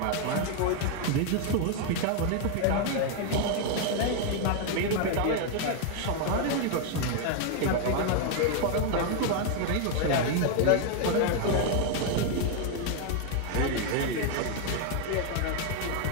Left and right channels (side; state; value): both; different; correlation 0.00